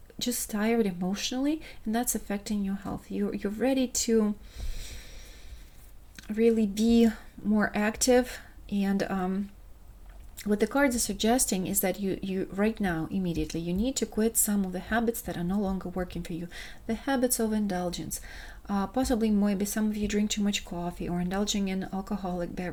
just tired emotionally, and that's affecting your health. You're ready to really be more active, and what the cards are suggesting is that you right now, immediately, you need to quit some of the habits that are no longer working for you. The habits of indulgence. Possibly, maybe some of you drink too much coffee, or indulging in alcoholic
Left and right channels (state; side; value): identical; both; correlation 1.00